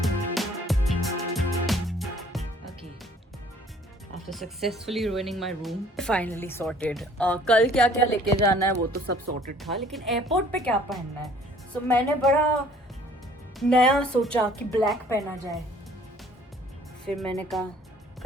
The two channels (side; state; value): both; normal; correlation 0.55